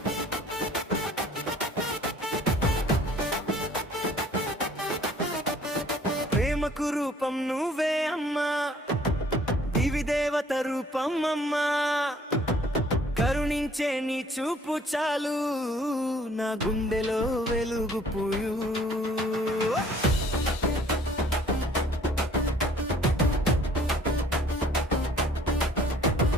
ప్రేమకు రూపం నువ్వే అమ్మా, దివి దేవత రూపం అమ్మా. కరుణించే నీ చూపు చాలు, నా గుండెలో వెలుగు పూయు.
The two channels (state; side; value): normal; both; correlation 0.57